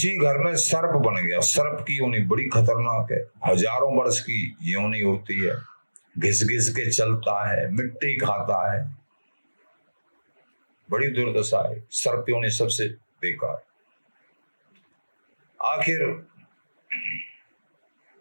घर में सर्प बन गया। सर्प की योनि बड़ी खतरनाक है, हजारों वर्ष की योनि होती है, घिस घिस के चलता है, मिट्टी खाता है, बड़ी दुर्दशा है। सर्प योनि सबसे बेकार। आखिर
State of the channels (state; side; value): inverted; both; correlation -1.00